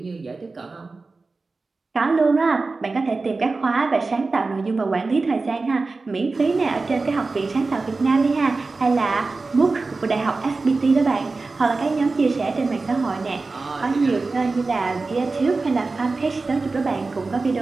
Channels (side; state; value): left; quieter; 3.8 dB